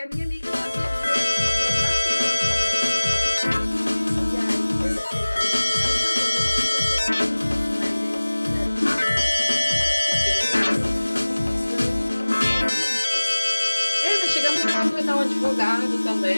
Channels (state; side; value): inverted; both; correlation -1.00